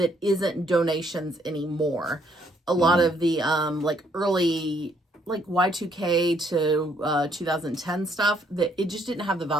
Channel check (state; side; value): normal; both; correlation 0.69